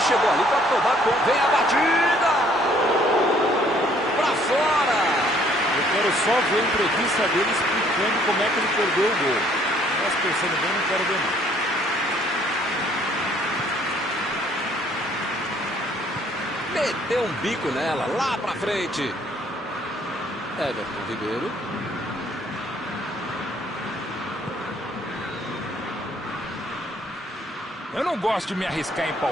chegou ali para tomar conta. Vem a batida! Para fora! Eu quero só ver a entrevista dele explicando como é que ele perdeu o gol. Mas pensando bem, não quero ver não. Meteu um bico nela, lá pra frente. Everton Ribeiro. Eu não gosto de me arriscar em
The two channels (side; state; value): both; normal; correlation 0.62